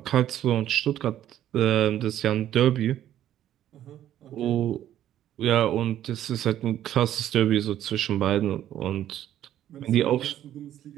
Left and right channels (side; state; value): left; quieter; 11.8 dB